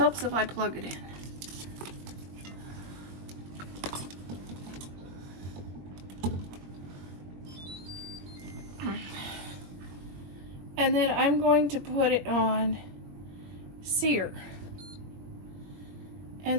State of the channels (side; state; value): left; late; 21 ms